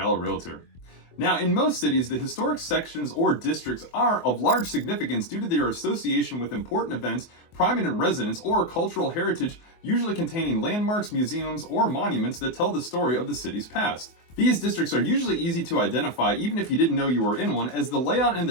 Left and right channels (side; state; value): right; late; 24 ms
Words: realtor. Now, in most cities, the historic sections or districts are of large significance due to their association with important events, prominent residents, or cultural heritage, usually containing landmarks, museums, or monuments that tell the story of the city's past. These districts are usually easy to identify even if you didn't know you were in one, as the layout and